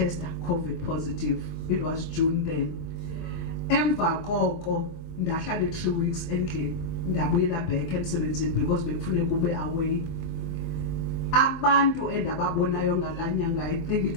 COVID positive. It was June then. Emva koko ndahlala 3 weeks endlini ndabuyela back emsebenzini because bekufuneka ube away. Abantu endababonayo ngalanyanga, I think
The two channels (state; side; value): late; right; 24 ms